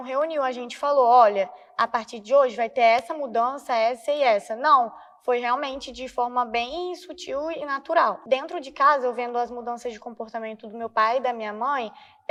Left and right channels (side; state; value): both; identical; correlation 1.00